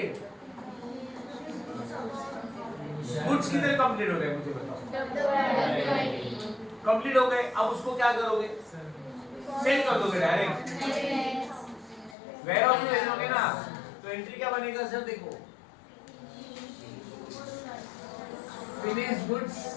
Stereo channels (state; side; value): drops out; right; at 12.2 s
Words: गुड्स कितने कंप्लीट हो गए मुझे बताओ कंप्लीट हो गए अब उसको क्या करोगे सेल कर दोगे डायरेक्ट वेयर हाउस में भेजोगे ना तो एंट्री क्या बनेगा सर देखो फिनिश गुड्स